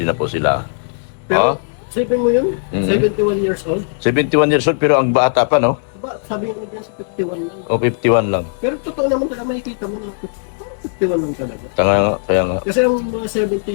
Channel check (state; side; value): silent; right; digital silence